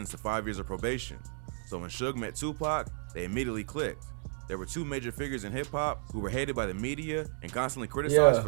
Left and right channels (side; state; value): left; silent; 56 dB below the other